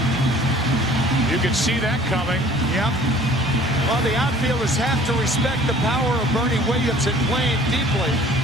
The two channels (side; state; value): both; normal; correlation 0.51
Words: You could see that coming. Yep. Well, the outfielders have to respect the power of Bernie Williams and playing deeply.